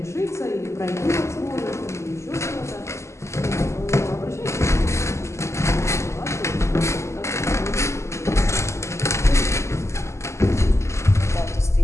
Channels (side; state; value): right; late; 0.13 ms